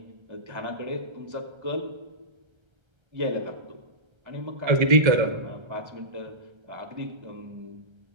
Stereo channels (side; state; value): left; late; 1.3 ms